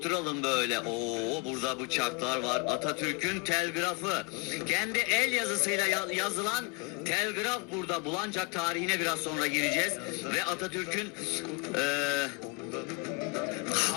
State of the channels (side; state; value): right; quieter; 27.8 dB